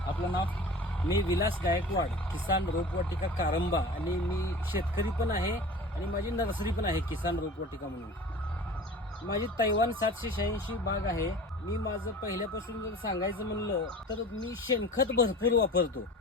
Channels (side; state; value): both; normal; correlation 0.39